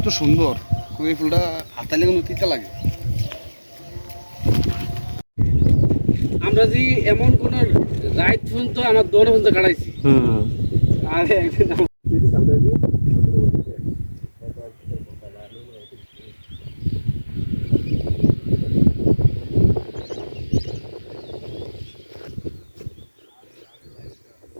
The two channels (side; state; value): both; inverted; correlation -1.00